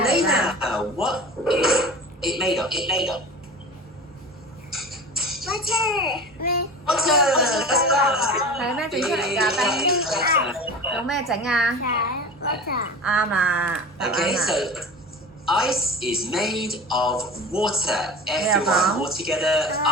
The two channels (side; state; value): both; normal; correlation 0.33